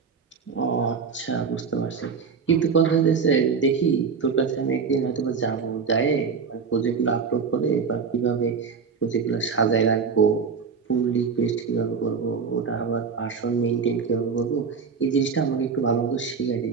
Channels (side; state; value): left; quieter; 5.8 dB